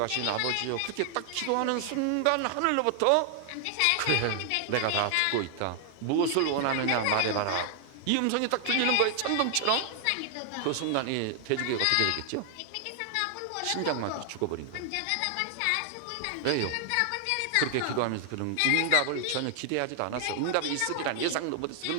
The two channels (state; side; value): different; both; correlation 0.00